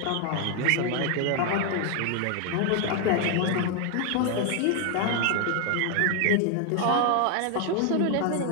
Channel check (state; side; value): different; both; correlation 0.00